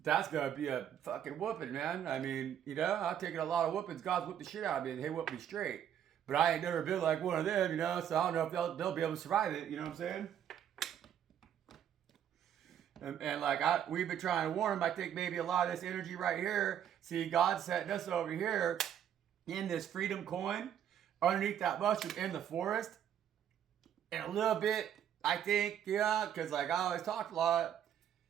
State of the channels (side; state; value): left; quieter; 9.7 dB